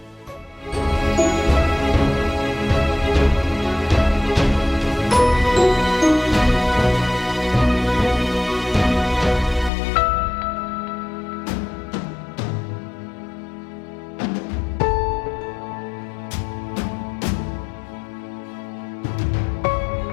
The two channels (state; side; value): drops out; right; at 9.7 s